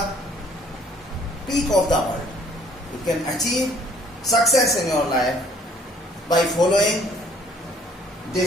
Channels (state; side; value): normal; both; correlation 0.59